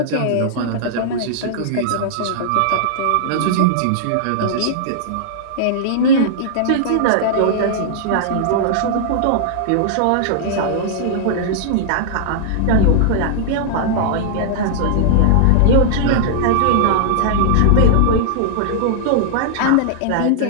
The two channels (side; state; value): both; different; correlation -0.01